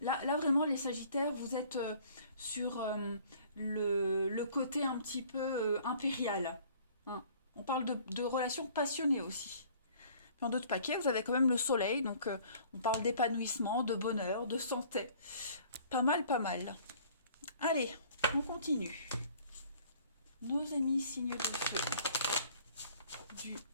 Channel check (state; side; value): inverted; both; correlation -0.53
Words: vraiment, les Sagittaires, vous êtes sur le côté un petit peu impérial. Hein. On parle de relations passionnées aussi. Dans d'autres paquets, vous avez quand même le soleil, donc on parle d'épanouissement, de bonheur, de santé. Pas mal, pas mal. Allez, on continue. Nos amis signes de feu du